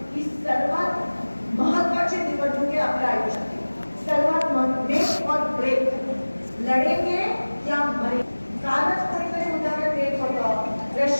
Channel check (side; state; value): both; inverted; correlation -1.00